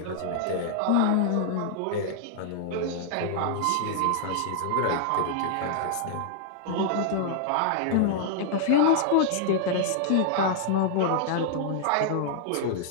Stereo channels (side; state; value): both; different; correlation -0.01